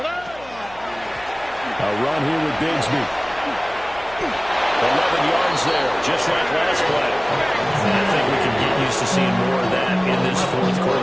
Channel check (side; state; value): left; noise; hum, 22 dB below the sound